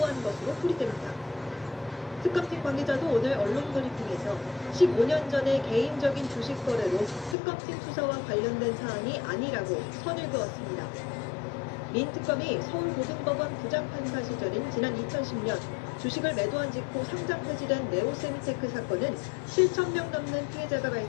것으로 풀이됩니다. 특검팀 관계자도 오늘 언론 브리핑에서 15년 전의 개인적인 주식 거래로 특검팀 수사와 관련된 사안이 아니라고 선을 그었습니다. 민 특검이 서울고등법원 부장판사 시절인 지난 2010년 주식을 매도한 직후 상장 폐지된 네오세미테크 사건은 7,000명 넘는 피해자가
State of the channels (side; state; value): right; drops out; at 7.4 s